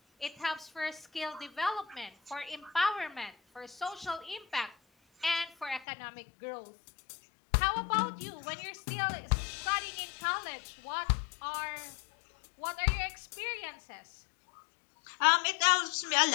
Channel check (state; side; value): drops out; right; at 5.9 s